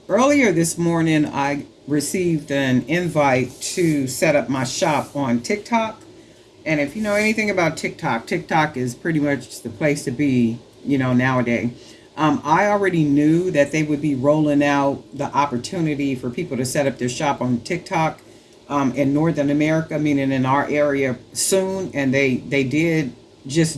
this morning, I received an invite to set up my shop on TikTok. And if you know anything about TikTok, TikTok is pretty much the place to be, nowadays. I already knew that they would be rolling out the opportunity for people to set up their shop on TikTok in Northern America, meaning in our area soon, and they did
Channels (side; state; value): both; identical; correlation 1.00